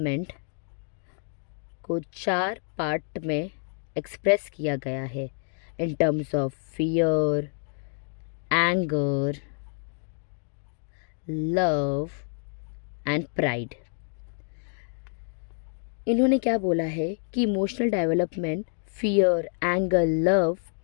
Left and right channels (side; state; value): right; silent; 56 dB below the other